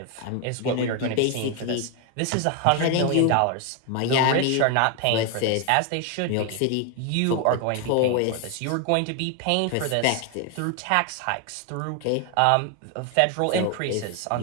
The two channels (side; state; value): both; different; correlation 0.01